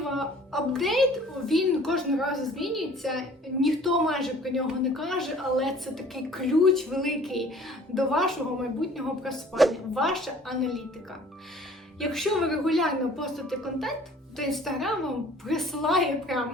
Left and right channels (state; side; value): normal; both; correlation 0.52